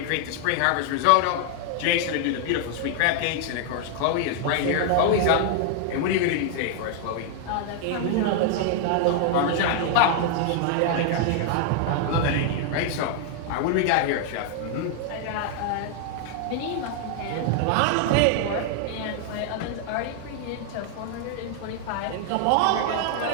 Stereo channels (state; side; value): different; both; correlation 0.00